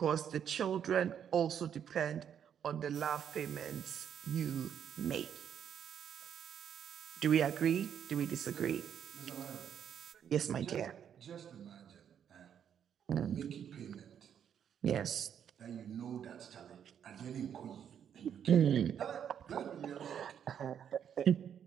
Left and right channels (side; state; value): left; quieter; 8.7 dB